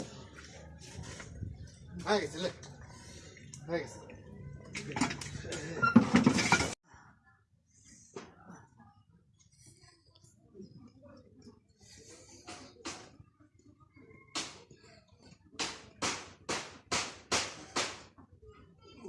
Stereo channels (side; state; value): both; identical; correlation 1.00